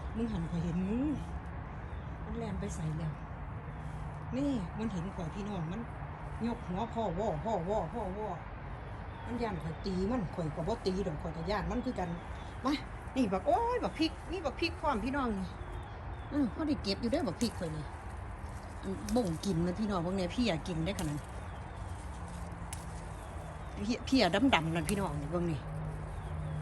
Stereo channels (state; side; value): identical; both; correlation 1.00